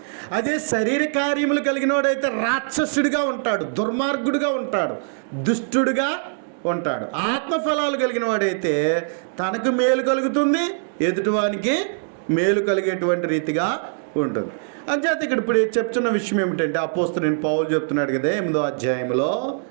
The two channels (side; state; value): left; silent; digital silence